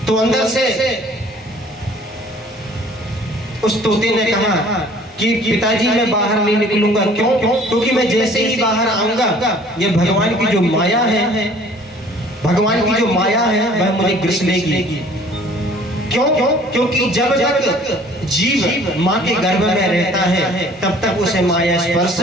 तो अंदर से उस तोते ने कहा कि पिताजी मैं बाहर नहीं निकलूंगा। क्यों? क्योंकि मैं जैसे ही बाहर आऊंगा ये भगवान की जो माया है, भगवान की जो माया है वह मुझे ग्रस लेगी। क्यों? क्योंकि जब तक जीव माँ के गर्भ में रहता है तब तक उसे माया स्पर्श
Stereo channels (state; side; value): normal; both; correlation 0.53